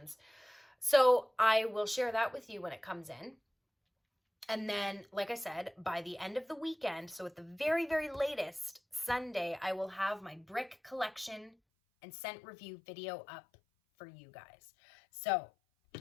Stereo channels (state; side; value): drops out; right; at 11.6 s